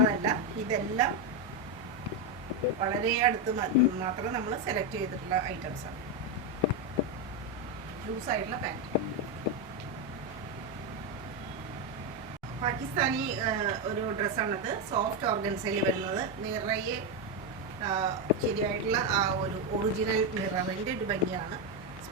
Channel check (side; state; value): both; normal; correlation 0.06